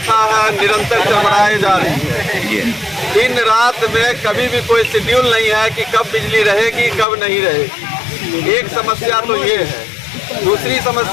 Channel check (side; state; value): right; drops out; at 7.1 s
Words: है निरंतर चरमराई जा रही है। दिन रात में कभी भी कोई शेड्यूल नहीं है कि कब बिजली रहेगी कब नहीं रहेगी। एक समस्या तो ये है। दूसरी